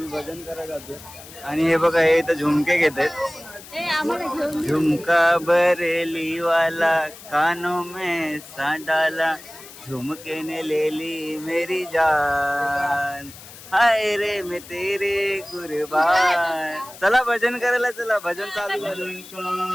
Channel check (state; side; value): noise; left; hiss, 17 dB below the sound